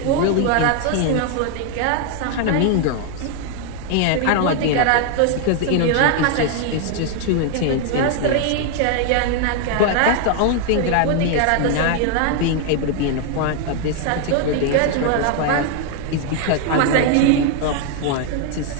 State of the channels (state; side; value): different; both; correlation 0.00